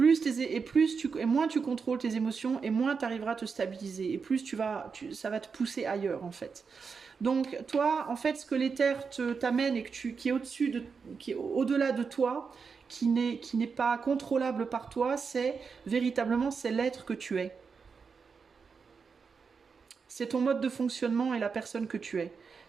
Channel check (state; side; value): quieter; left; 5.5 dB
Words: moins tu contrôles tes émotions, et moins tu arriveras à te stabiliser, et plus ça va te pousser ailleurs en fait. Donc toi, en fait, ce que l'éther t'amène et qui est au-delà de toi, qui n'est pas contrôlable par toi, c'est l'être que tu es. C'est ton mode de fonctionnement et la personne que tu es.